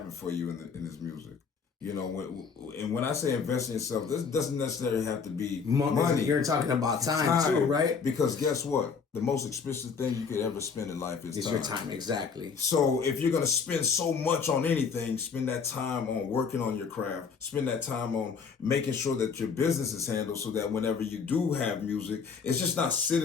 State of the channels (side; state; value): right; quieter; 5.8 dB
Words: for you in this music. You know, when I say invest in yourself, this doesn't necessarily have to be money. You're talking about time too, right? Because guess what? The most expensive thing you could ever spend in life is time. Your time, exactly. So if you're going to spend so much on anything, spend that time on working on your craft. Spend that time on making sure that your business is handled so that whenever you do have music, it's just not